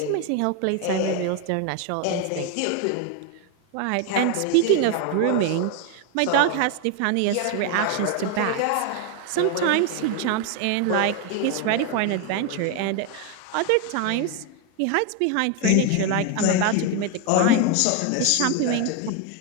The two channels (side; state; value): both; different; correlation 0.01